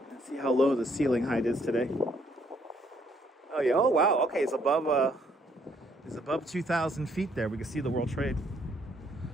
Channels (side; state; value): both; normal; correlation 0.68